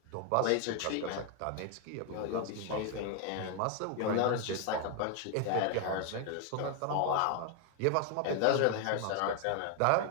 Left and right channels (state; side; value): different; both; correlation 0.00